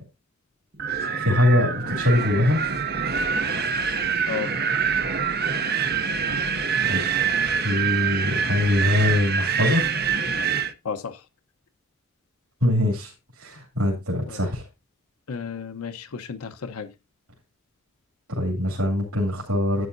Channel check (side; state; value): both; normal; correlation 0.53